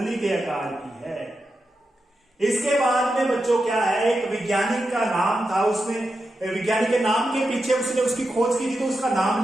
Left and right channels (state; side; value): normal; both; correlation 0.89